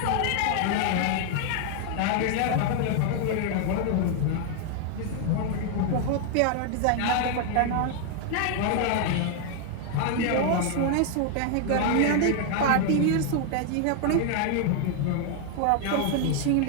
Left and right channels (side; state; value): both; different; correlation 0.00